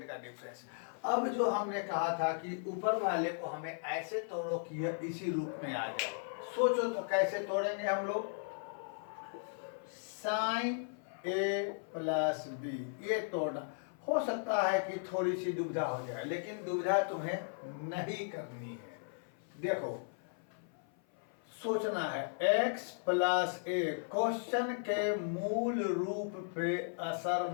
का डिफरेंस। अब जो हमने कहा था कि ऊपर वाले को हमें ऐसे तोड़ो कि यह इसी रूप में आ जाए। सोचो तो कैसे तोड़ेंगे हम लोग। साइन ए प्लस बी, ये तोड़ना हो सकता है कि थोड़ी सी दुविधा हो जाए, लेकिन दुविधा तुम्हें नहीं करनी है। देखो सोचना है, x प्लस ए क्वेश्चन के मूल रूप पे असर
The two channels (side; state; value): right; silent; 53 dB below the other